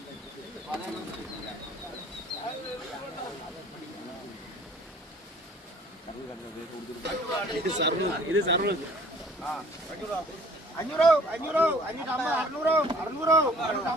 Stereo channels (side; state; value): both; normal; correlation 0.53